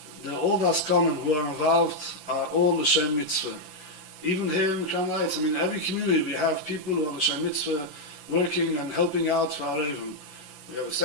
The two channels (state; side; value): late; left; 11 ms